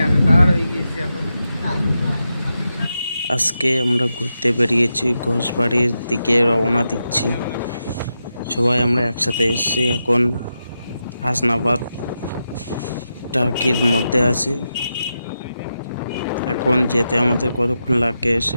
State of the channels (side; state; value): both; inverted; correlation -0.88